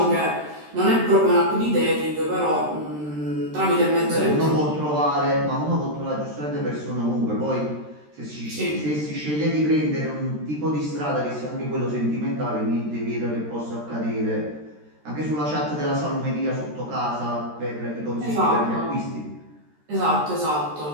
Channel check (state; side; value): late; left; 13 ms